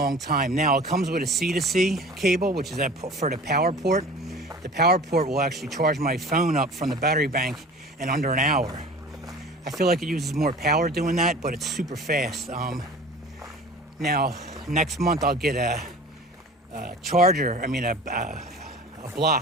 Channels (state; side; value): normal; both; correlation 0.41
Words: time. Now, it comes with a C to C cable, which is for the power port. The power port will actually charge my phone up from the battery bank in under an hour. I feel like it uses more power doing that, but it's super fast. Now, next month I'll get a charger, a